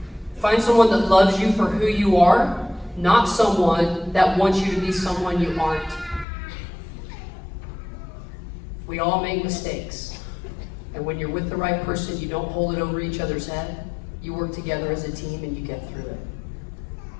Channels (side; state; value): right; drops out; at 6.2 s